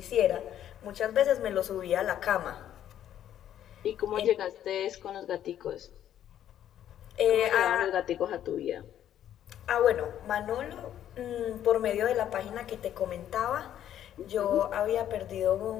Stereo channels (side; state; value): right; quieter; 10.9 dB